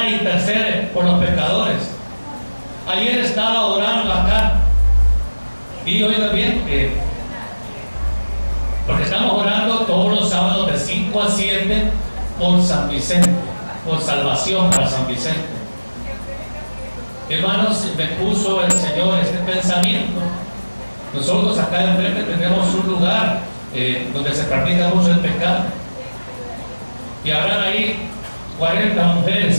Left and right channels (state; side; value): inverted; both; correlation -1.00